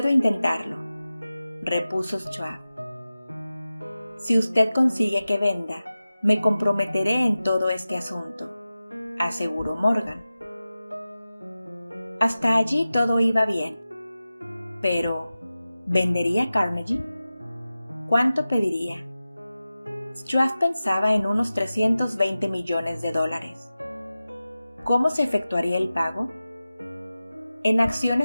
intentarlo, repuso Schwab. Si usted consigue que venda, me comprometeré en todo este asunto, aseguró Morgan. Hasta allí todo iba bien. Pero, ¿vendería Carnegie? ¿Cuánto pediría? Schwab pensaba en unos $320 millones. ¿Cómo se efectuaría el pago? ¿En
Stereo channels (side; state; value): both; inverted; correlation -0.95